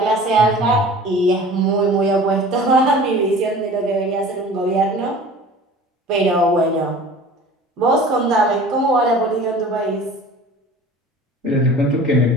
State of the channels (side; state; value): both; normal; correlation 0.43